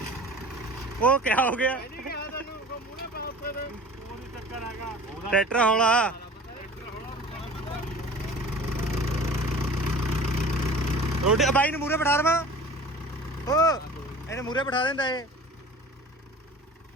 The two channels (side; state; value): both; normal; correlation 0.41